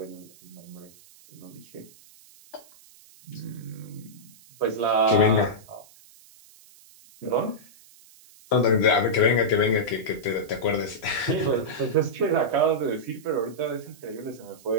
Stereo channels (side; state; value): right; noise; hiss, 24 dB below the sound